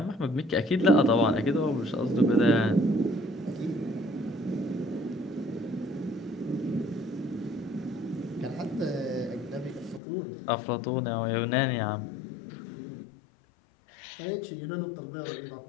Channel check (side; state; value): right; drops out; at 10.0 s